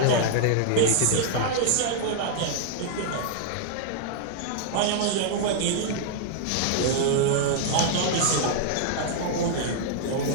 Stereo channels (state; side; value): different; both; correlation -0.01